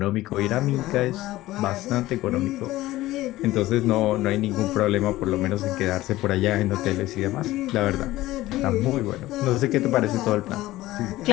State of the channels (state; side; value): quieter; right; 16.8 dB